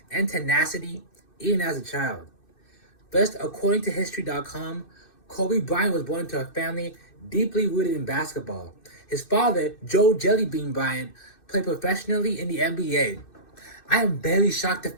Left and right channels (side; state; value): right; late; 2.6 ms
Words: and tenacity even as a child. First, according to History.com, Kobe Bryant was born into a family deeply rooted in basketball. His father, Joe Jellybean Bryant, played professionally in the NBA. I am very shocked to